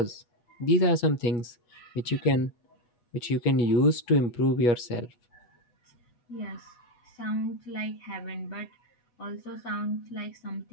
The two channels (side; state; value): right; late; 8.5 ms